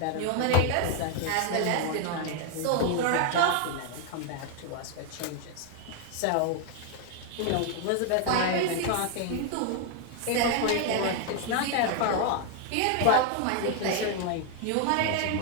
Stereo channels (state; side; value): different; both; correlation 0.00